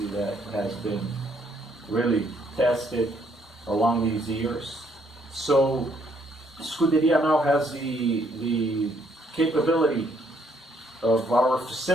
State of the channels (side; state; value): both; normal; correlation 0.69